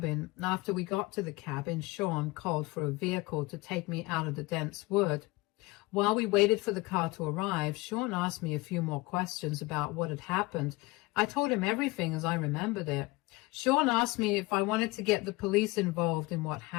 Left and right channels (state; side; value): quieter; right; 22.7 dB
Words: After we got to the cabin, Sean called for a vehicle to take me out of the dense wood. While we waited for the car to arrive, Sean asked me a few more questions about what had happened. I told him everything as I remembered it. Sean asked me if I wanted to get the police involved in what